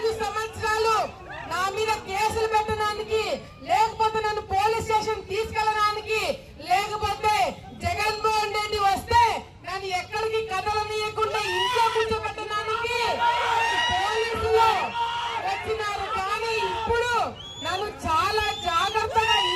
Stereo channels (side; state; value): both; identical; correlation 1.00